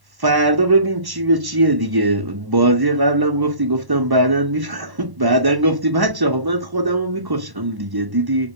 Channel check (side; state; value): left; late; 1.1 ms